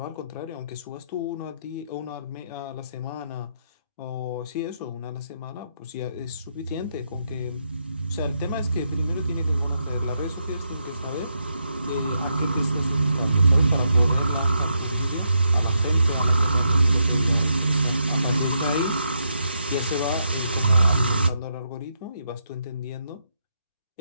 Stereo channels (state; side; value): inverted; both; correlation -0.80